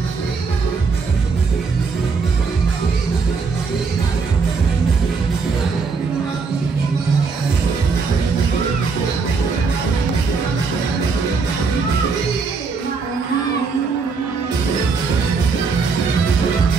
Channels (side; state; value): left; quieter; 4.9 dB